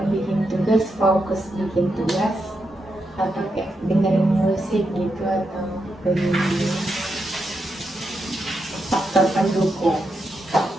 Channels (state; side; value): normal; both; correlation 0.84